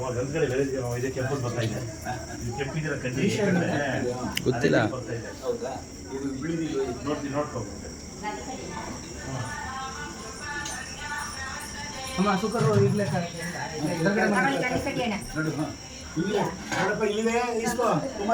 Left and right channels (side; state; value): both; identical; correlation 1.00